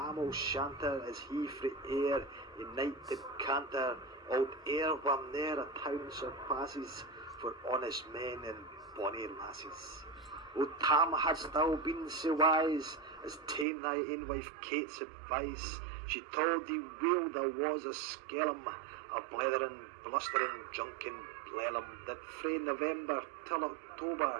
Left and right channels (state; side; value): drops out; left; at 13.7 s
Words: O'Shanter, as he frae air in night did canter, old air where ne'er a town surpasses for honest men and bonny lasses. O Tam, hadst thou been so wise as ta'en thy ain wife Kate's advice, she told thee weel there was a skellum, a blethering, blustering, drunken blellum, that frae November till